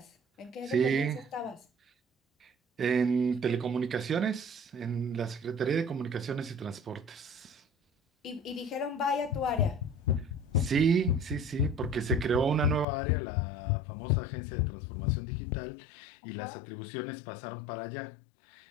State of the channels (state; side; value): drops out; right; at 12.9 s